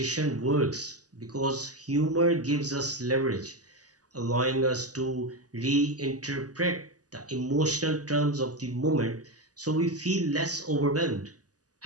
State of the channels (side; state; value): left; late; 0.67 ms